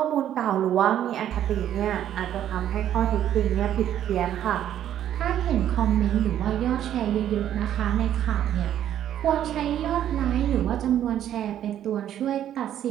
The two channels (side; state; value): left; quieter; 10.9 dB